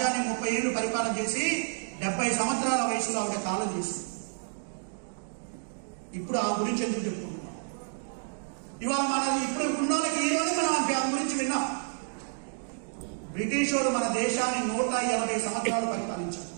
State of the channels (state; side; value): silent; left; 58 dB below the other